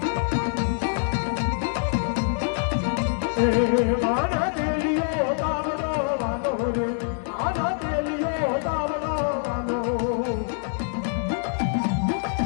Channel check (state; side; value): silent; right; 62 dB below the other